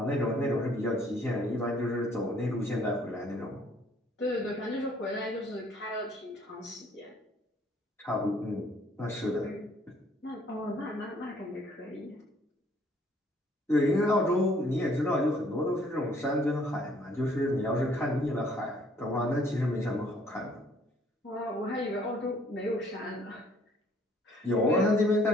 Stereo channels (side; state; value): both; normal; correlation 0.61